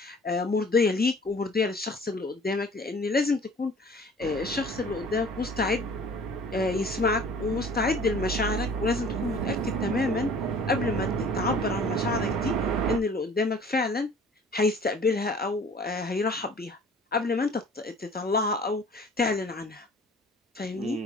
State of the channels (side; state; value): both; normal; correlation 0.48